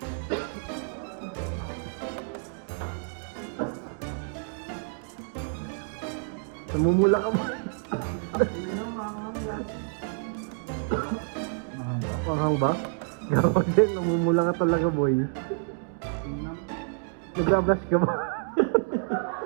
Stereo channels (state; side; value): silent; left; 59 dB below the other